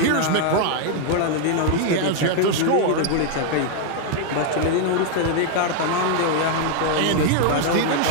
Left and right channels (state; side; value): different; both; correlation 0.00